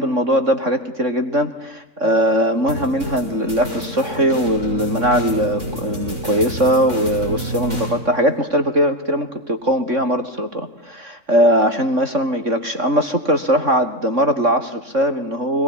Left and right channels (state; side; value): late; left; 3.6 ms